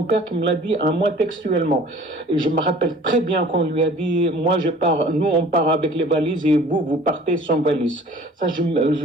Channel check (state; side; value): normal; both; correlation 0.48